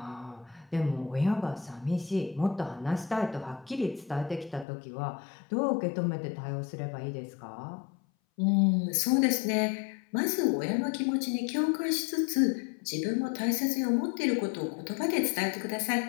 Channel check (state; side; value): drops out; right; at 4.7 s